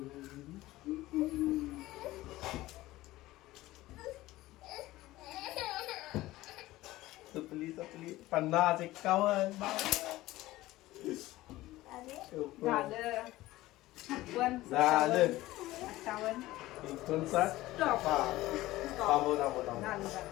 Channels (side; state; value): right; quieter; 17.3 dB